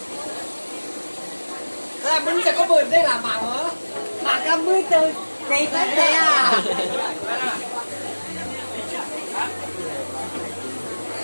Là mình sẽ có bươn đây là mảng hả? Mảng cam mươi từ này tới đây à?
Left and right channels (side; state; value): both; inverted; correlation -1.00